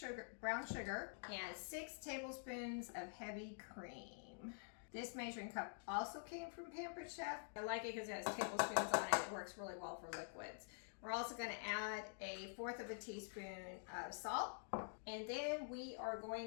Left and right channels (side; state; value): right; silent; digital silence